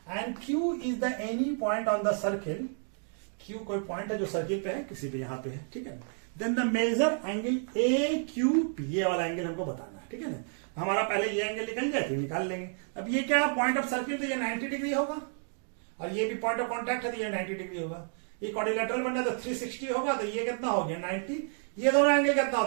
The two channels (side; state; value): left; silent; 57 dB below the other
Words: and Q is the any point on the circle, Q कोई पॉइंट है जो सर्किल पे है, किसी पे यहाँ पे है, ठीक है। Then the major angle A Q P, ये वाला एंगल हमको बताना है, ठीक है ना। हमारा पहले ये एंगल निकल जाए तो निकाल लेंगे। अब ये क्या पॉइंट ऑफ सर्किल, तो ये 90 डिग्री होगा, और ये भी पॉइंट ऑफ कॉन्टैक्ट है तो ये 90 डिग्री होगा, ये क्वाड्रिलेटरल बनना तो 360 होगा, तो ये कितना हो गया 90, ये दोनों एंगल कितना